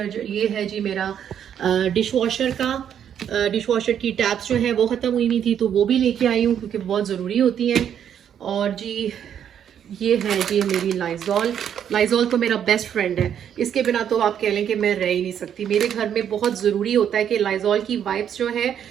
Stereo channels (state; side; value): quieter; left; 9.1 dB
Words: ये है जी मेरा डिश वॉशर का। डिश वॉशर की टैप्स जो है वो ख़त्म हुई नहीं थी तो वो भी लेके आई हूँ, क्योंकि बहुत ज़रूरी होती हैं। और जी ये है जी मेरी लाइजॉल। लाइजॉल तो मेरा बेस्ट फ्रेंड है। इसके बिना तो आप कह लें कि मैं रह ही नहीं सकती। मेरे घर में बहुत ज़रूरी होता है कि लाइजॉल की वाइप्स जो है,